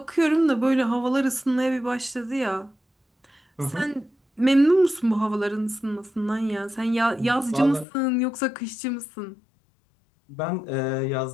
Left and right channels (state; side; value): drops out; right; at 7.9 s